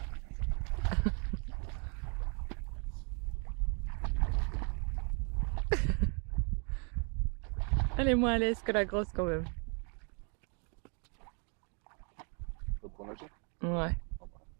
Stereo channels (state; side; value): quieter; left; 37.9 dB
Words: Elle est moins à l'aise que la grosse quand même. Tu vas prendre la chaîne? Ouais.